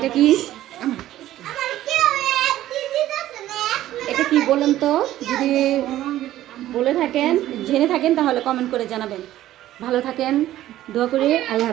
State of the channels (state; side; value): quieter; left; 13.9 dB